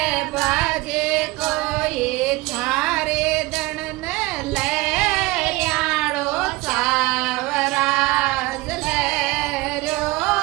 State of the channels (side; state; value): left; quieter; 21.5 dB